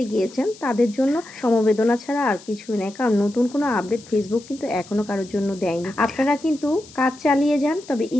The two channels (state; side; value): noise; left; hiss, 21 dB below the sound